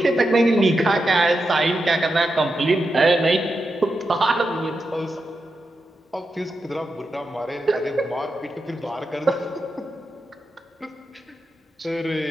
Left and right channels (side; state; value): both; normal; correlation 0.88